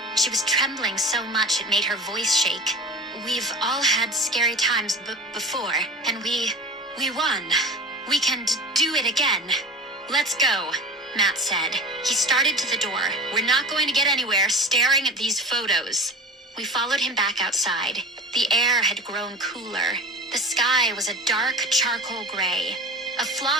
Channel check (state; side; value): normal; both; correlation 0.33